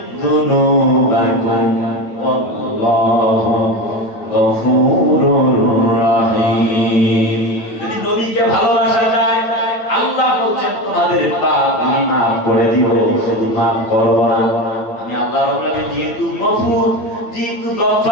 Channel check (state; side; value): late; right; 9.0 ms